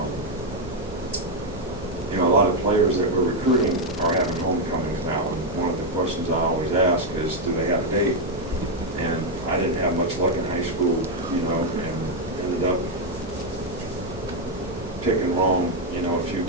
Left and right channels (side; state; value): both; normal; correlation 0.02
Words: a lot of players that we're recruiting are having homecomings now, and one of the questions I always ask is, do they have a date? And I didn't have much luck in high school, and ended up picking wrong, a few